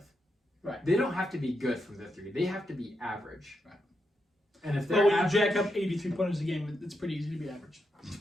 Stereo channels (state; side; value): normal; both; correlation 0.84